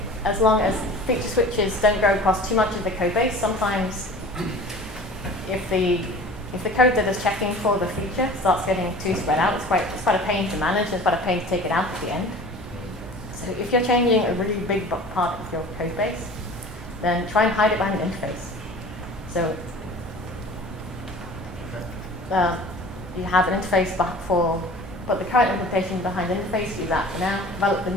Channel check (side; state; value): both; normal; correlation 0.42